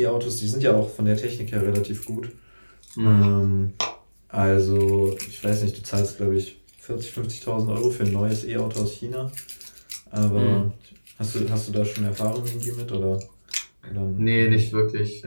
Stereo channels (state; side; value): inverted; both; correlation -1.00